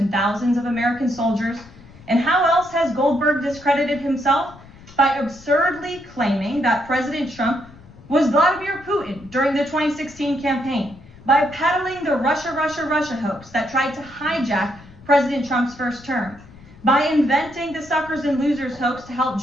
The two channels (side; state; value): left; noise; rumble, 21 dB below the sound